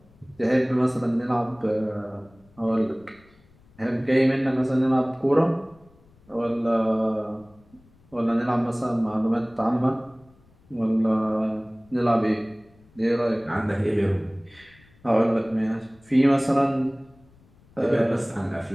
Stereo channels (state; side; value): noise; left; rumble, 29 dB below the sound